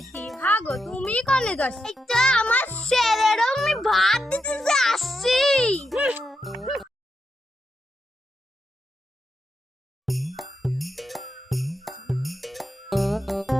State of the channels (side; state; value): both; normal; correlation 0.84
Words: হ্যাঁ গো, তুমি কনে যাস? এটা আমার ছেলেরও আমি ভাত দিতে যে আসছি।